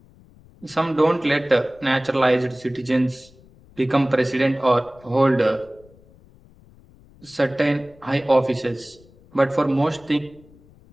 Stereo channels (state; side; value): noise; left; rumble, 26 dB below the sound